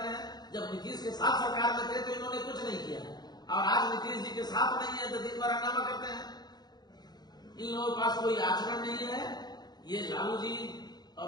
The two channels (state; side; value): late; right; 0.20 ms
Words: हैं। जब नीतीश के साथ सरकार में थे तो इन्होंने कुछ नहीं किया, और आज नीतीश जी के साथ नहीं है तो दिन भर हंगामा करते हैं। इन लोगों के पास कोई आचरण नहीं है। ये लालू जी